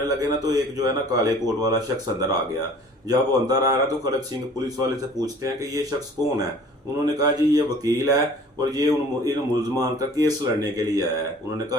लगे ना, तो एक जो है ना काले कोट वाला शख्स अंदर आ गया। जब वो अंदर आ रहा, तो खड़ग सिंह पुलिस वाले से पूछते हैं कि ये शख्स कौन है? उन्होंने कहा जी ये वकील है, और ये इन मुलजमान का केस लड़ने के लिए आया है। उन्होंने कहा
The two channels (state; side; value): normal; both; correlation 0.49